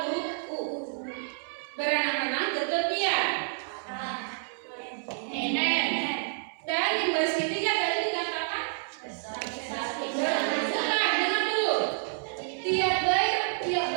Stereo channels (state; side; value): silent; left; 59 dB below the other